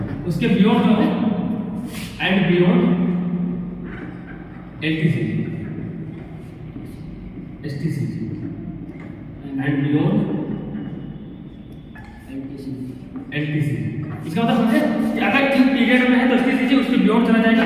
उसके बियॉन्ड जो है and beyond LTCG, STCG and beyond LTCG. इसका मतलब समझे कि अगर किस पीरियड में है तो एसटीसीजी, उसके बियॉन्ड चला जाएगा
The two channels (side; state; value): both; identical; correlation 1.00